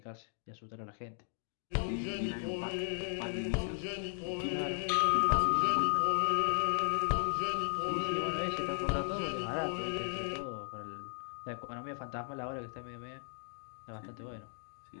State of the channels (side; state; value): right; silent; 54 dB below the other